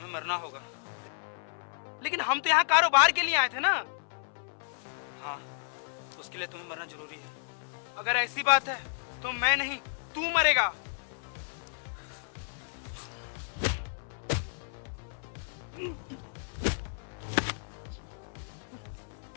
मरना होगा। लेकिन हम तो यहाँ कारोबार के लिए आए थे ना। हाँ, उसके लिए तुम्हें मरना जरूरी है। अगर ऐसी बात है तो मैं नहीं, तू मरेगा।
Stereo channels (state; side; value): silent; right; 56 dB below the other